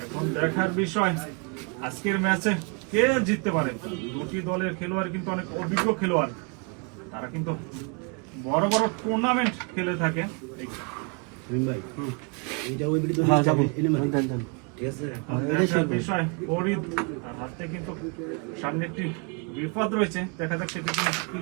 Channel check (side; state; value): left; quieter; 33.6 dB